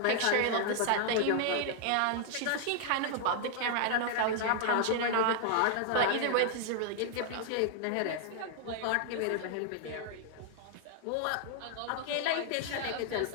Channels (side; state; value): both; different; correlation -0.01